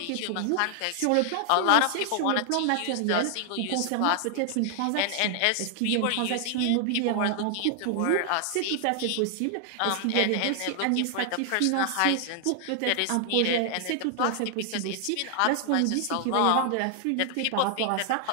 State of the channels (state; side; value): different; both; correlation 0.00